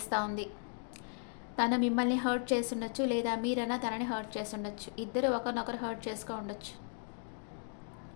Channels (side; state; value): right; silent; 54 dB below the other